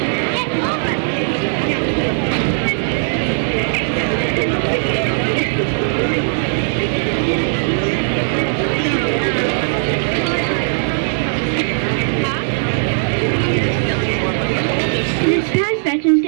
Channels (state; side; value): silent; left; 62 dB below the other